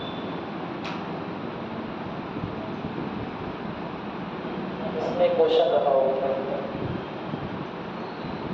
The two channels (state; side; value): identical; both; correlation 1.00